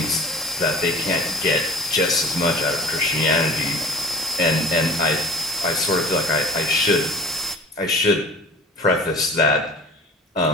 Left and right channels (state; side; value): normal; both; correlation 0.43